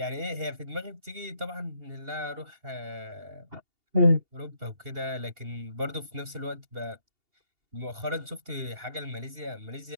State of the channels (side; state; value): left; late; 2.8 ms